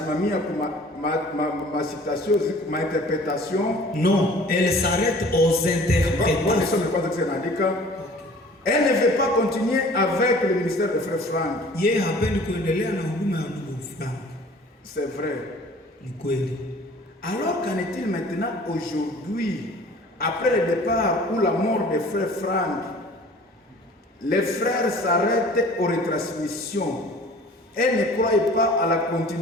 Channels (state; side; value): normal; both; correlation 0.48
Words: kwa ma citation, ma interprétation. Non, elle s'arrête aux interprétations. Elle ne veut pas continuer avec le ministère de Frère Frank. Yeye hapendi kuendelea na huduma ya ndugu Frank. C'est vrai. Ni kweli. Alors qu'en est-il maintenant aujourd'hui, après le départ ou la mort de Frère Frank, les frères s'arrêtent aux retransmissions et ne croient pas à la